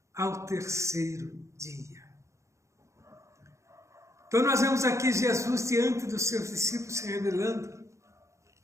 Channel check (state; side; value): late; left; 0.14 ms